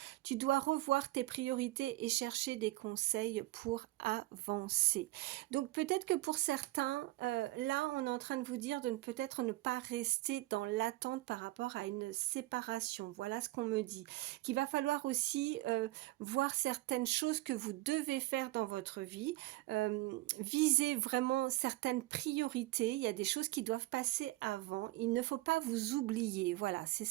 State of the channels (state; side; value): quieter; left; 18.9 dB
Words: Tu dois revoir tes priorités et chercher des conseils pour avancer. Donc peut-être que pour certains, là, on est en train de vous dire de peut-être ne pas rester dans l'attente par rapport à une séparation. Voilà ce qu'on me dit. Qu'il va falloir aussi voir certaines choses que vous devez faire dans votre vie. Viser vraiment certaines priorités. Il y a des choses qui doivent passer avant. Il ne faut pas vous oublier. Voilà, c'est